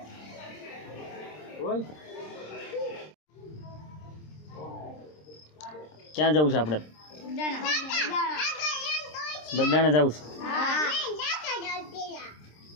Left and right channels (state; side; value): late; right; 26 ms